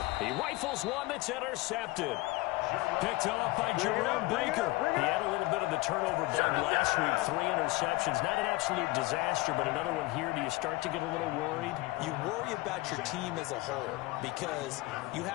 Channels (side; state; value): right; quieter; 20.7 dB